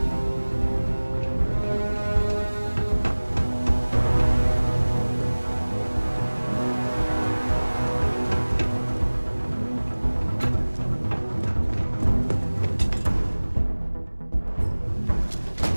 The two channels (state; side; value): inverted; both; correlation -1.00